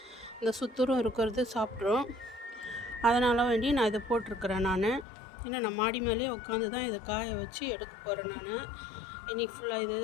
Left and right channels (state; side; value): drops out; right; at 5.1 s